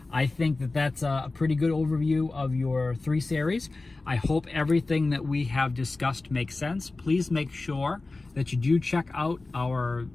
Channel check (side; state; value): right; quieter; 3.3 dB